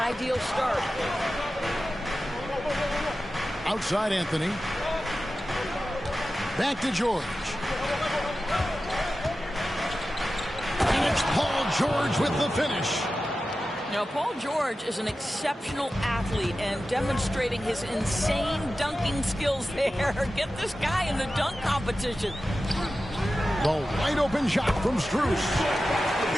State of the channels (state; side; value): normal; both; correlation 0.94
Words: start. Outside Anthony. Back to George. And it's Paul George with the finish. Now, Paul George is an exceptional athlete and demonstrating his insane dunking skills there. Get this guy in the dunk competition. The wide open shot from Strus.